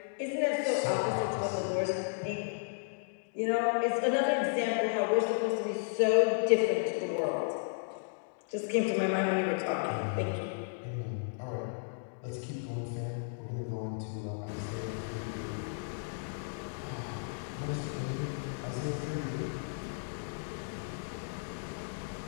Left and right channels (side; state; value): right; silent; digital silence